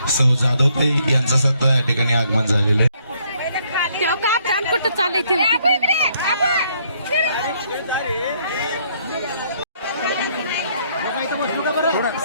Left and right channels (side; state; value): both; inverted; correlation -0.69